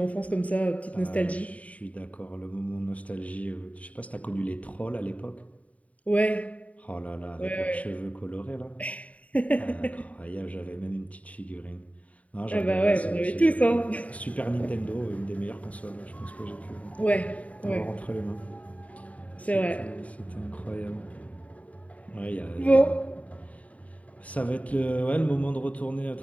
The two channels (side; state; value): right; late; 0.068 ms